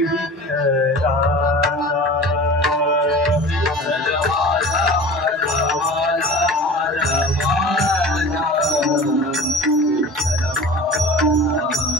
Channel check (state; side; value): normal; both; correlation 0.38